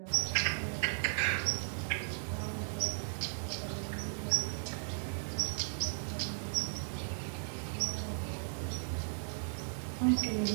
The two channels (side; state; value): left; silent; digital silence